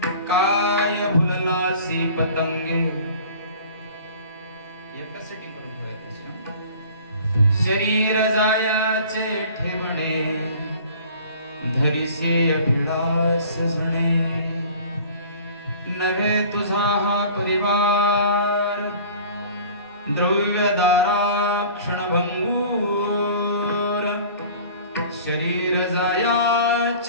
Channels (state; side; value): inverted; both; correlation -0.45